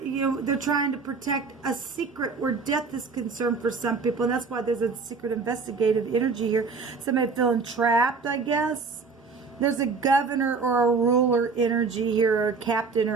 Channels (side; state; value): left; quieter; 4.7 dB